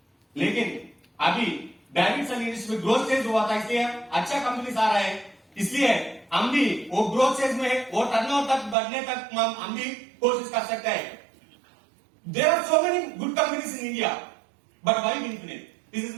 लेकिन अभी डायरेक्ट सेलिंग इंडस्ट्री में ग्रोथ स्टेज हुआ था, इसलिए अच्छा कंपनीज आ रहा है, इसलिए हम भी वो ग्रोथ स्टेज में वो टर्नओवर तक बढ़ने तक हम भी कोशिश कर सकते हैं। There are so many good companies in India, but why Infinite? This is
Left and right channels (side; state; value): left; drops out; at 8.8 s